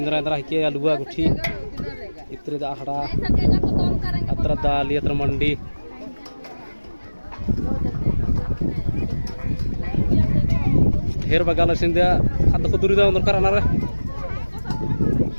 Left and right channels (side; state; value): both; inverted; correlation -1.00